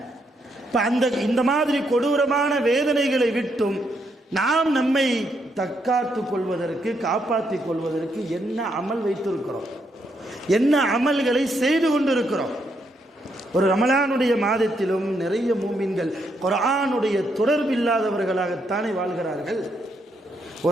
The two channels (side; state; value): both; normal; correlation 0.77